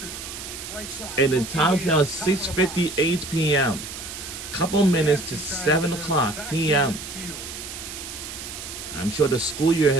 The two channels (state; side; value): noise; right; hiss, 10 dB below the sound